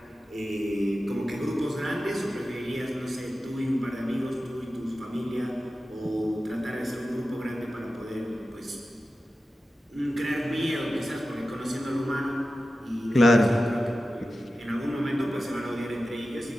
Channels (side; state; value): both; normal; correlation 0.93